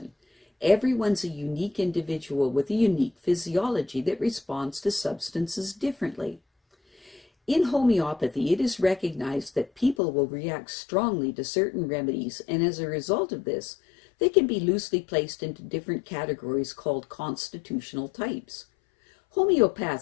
Everyone's a unique individual with a unique physiology that responds to substances differently. In homeopathy, it is recognized that people will react strongly to certain remedies, and as a result of this, they can be loosely placed into different categories called constitutional types.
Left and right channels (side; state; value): right; drops out; at 10.0 s